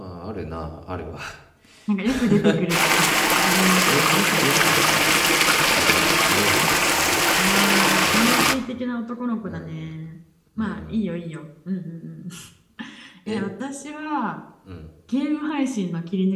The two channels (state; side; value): identical; both; correlation 1.00